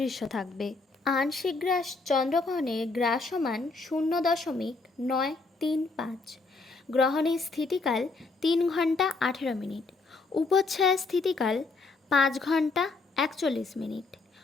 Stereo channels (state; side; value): quieter; right; 3.8 dB